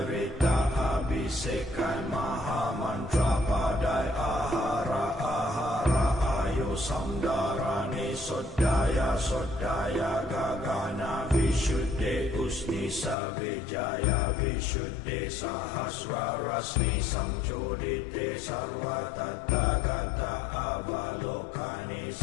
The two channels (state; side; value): drops out; right; at 13.2 s